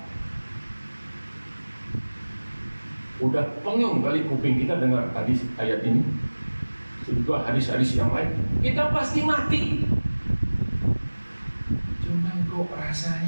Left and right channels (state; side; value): inverted; both; correlation -1.00